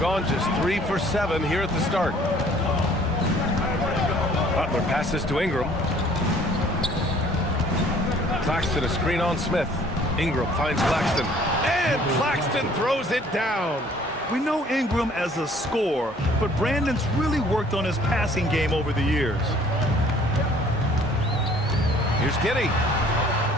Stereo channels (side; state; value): both; normal; correlation 0.56